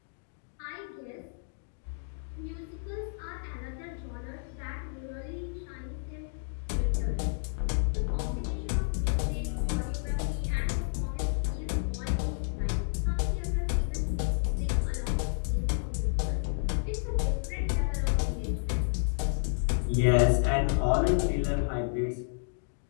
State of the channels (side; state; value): right; silent; digital silence